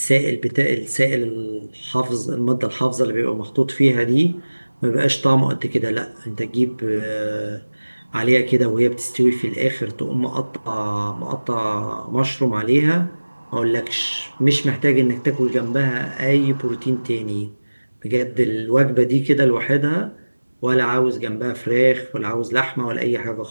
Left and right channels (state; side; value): inverted; both; correlation -1.00